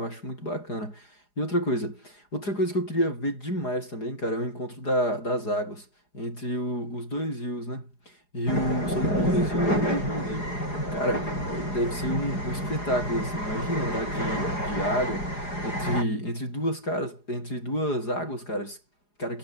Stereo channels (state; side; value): late; right; 4.9 ms